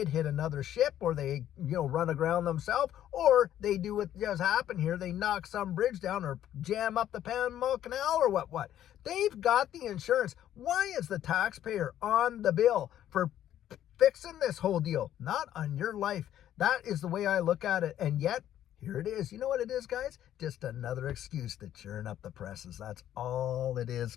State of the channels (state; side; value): quieter; right; 11.5 dB